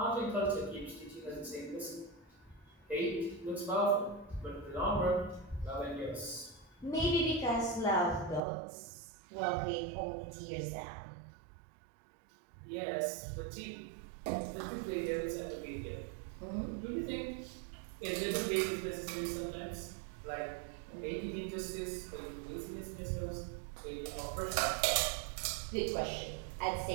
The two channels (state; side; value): drops out; left; at 8.4 s